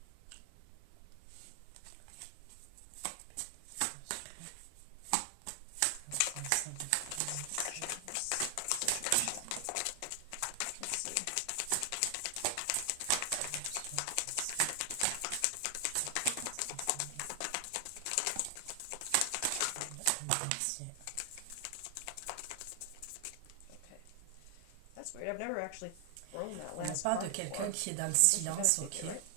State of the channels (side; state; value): both; different; correlation 0.00